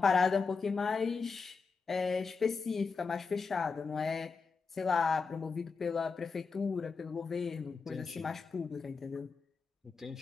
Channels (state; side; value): quieter; right; 4.9 dB